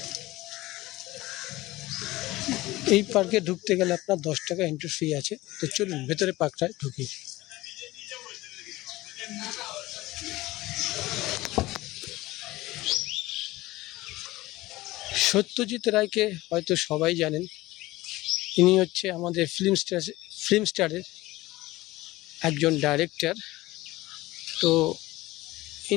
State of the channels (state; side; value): quieter; right; 18.6 dB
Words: এই পার্কে ঢুকতে গেলে আপনার 10 টাকা এন্ট্রি ফি আছে। তো চলুন ভেতরে পার্কটায় ঢুকি। সত্যজিৎ রায়কে হয়তো সবাই জানেন। ইনি হচ্ছে আমাদের ফিল্ম স্টারের একজন ডাইরেক্টর। তো